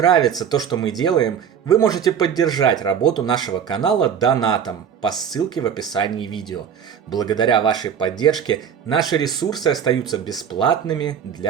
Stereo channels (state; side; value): quieter; left; 8.0 dB